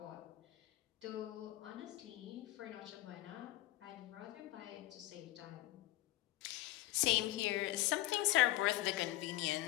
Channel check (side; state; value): right; quieter; 17.0 dB